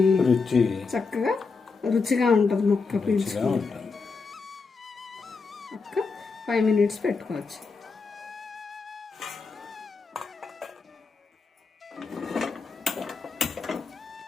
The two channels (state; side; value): quieter; right; 4.6 dB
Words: చక్కగా రుచిగా ఉంటుంది. ముక్క పీల్చుకొని ఒక 5 మినిట్స్ పెట్టుకోవచ్చు.